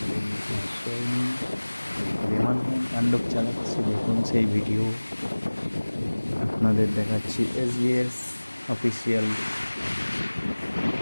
নিচে আশ্রয় নিন। রেমাল কেমন তাণ্ডব চালাচ্ছে দেখুন সেই ভিডিও আপনাদের দেখাচ্ছি এসবিএস অফিসিয়াল।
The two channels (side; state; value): both; inverted; correlation -1.00